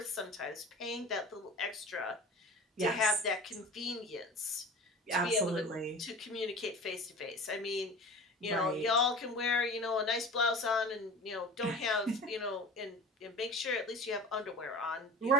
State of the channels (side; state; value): both; normal; correlation 0.37